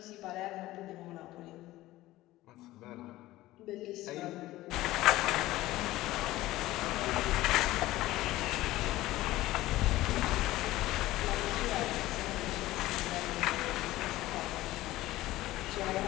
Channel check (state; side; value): quieter; right; 16.8 dB